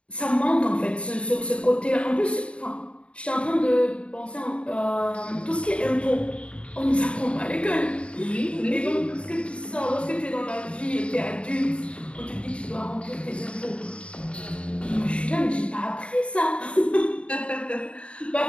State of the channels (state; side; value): late; right; 0.059 ms